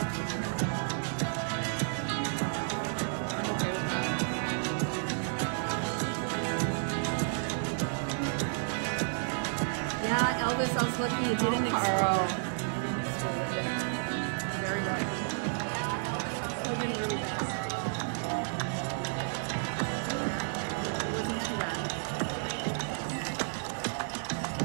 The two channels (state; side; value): silent; left; digital silence